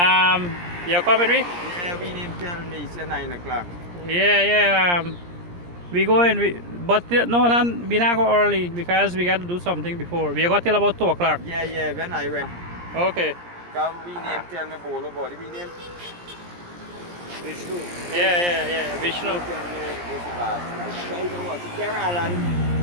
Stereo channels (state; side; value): late; left; 17 ms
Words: You coming with me? Yeah, we didn't tell me it's 9 o'clock. Yeah. We go in, but no, we not go early because we got to do something before. We got till about 2 o'clock. Yeah, when I went. Okay. Because we name tell me bowl about it. We name Vishnu. Yeah. Vishnu. Tell me this last night. So you know what? Alan.